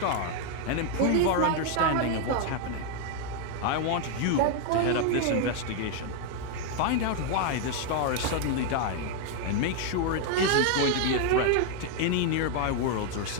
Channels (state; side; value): different; both; correlation 0.00